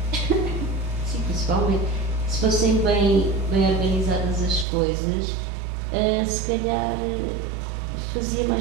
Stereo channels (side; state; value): left; drops out; at 4.7 s